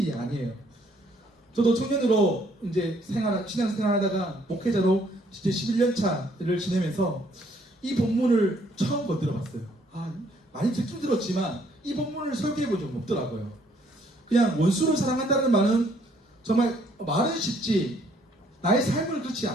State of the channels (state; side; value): normal; both; correlation 0.65